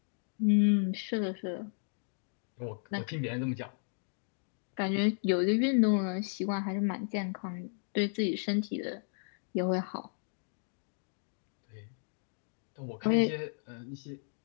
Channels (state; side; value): silent; right; digital silence